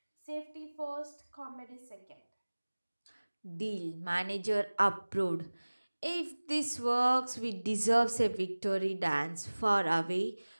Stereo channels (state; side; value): inverted; both; correlation -1.00